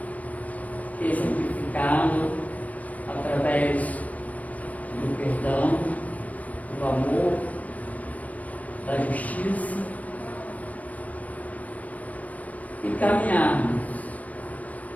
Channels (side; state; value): right; late; 0.070 ms